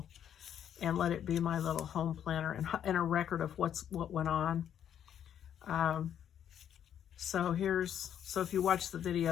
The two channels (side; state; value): right; quieter; 9.6 dB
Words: and let it be my little home planner and a record of what went on. So if you watch the